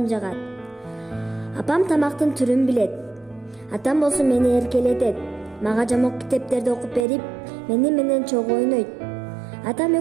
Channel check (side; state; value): left; drops out; at 7.1 s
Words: жагат. Апам тамактын түрүн билет. Атам болсо мени эркелетет. Мага жамок китептерди окуп берип, мени менен чогуу ойнойт. Атам